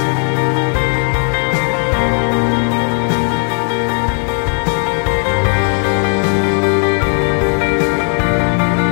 pas que vous êtes des merdes je sais pas, mais je vous dis que vous êtes des merdes si vous ne réalisez pas vos rêves, vous n'osez pas. Ça oui. Donc, réalisez vos rêves. Et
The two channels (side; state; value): right; quieter; 37.8 dB